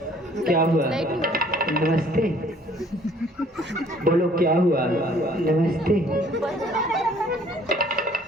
क्या हुआ? नमस्ते। बोलो क्या हुआ? नमस्ते।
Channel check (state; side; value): normal; both; correlation 0.58